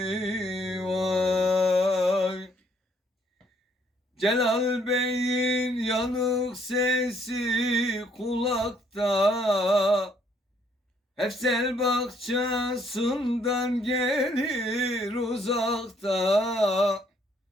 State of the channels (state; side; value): normal; both; correlation 0.67